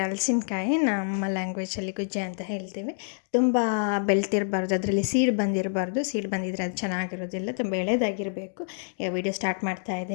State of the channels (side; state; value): right; silent; digital silence